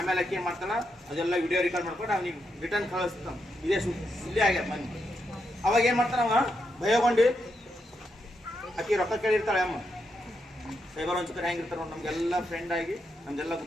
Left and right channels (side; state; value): both; normal; correlation 0.82